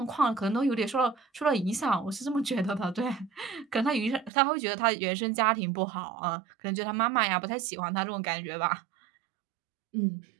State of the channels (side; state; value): left; drops out; at 4.3 s